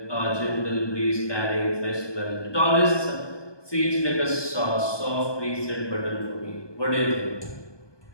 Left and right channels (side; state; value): right; late; 1.2 ms